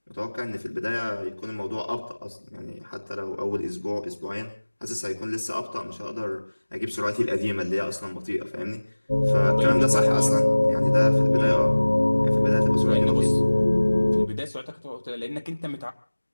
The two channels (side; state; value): both; inverted; correlation -1.00